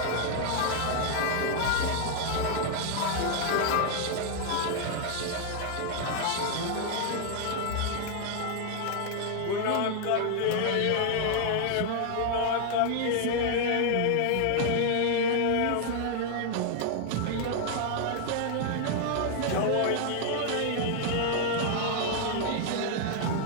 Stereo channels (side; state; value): both; different; correlation 0.00